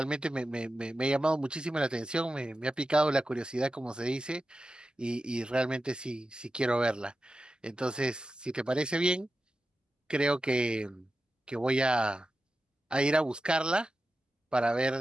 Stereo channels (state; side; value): normal; both; correlation 0.92